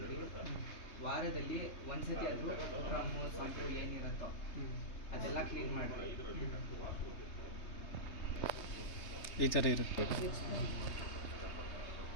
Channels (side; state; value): right; late; 3.2 ms